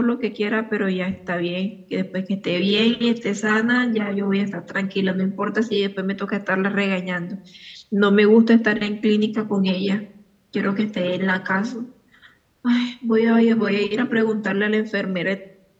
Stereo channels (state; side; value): identical; both; correlation 1.00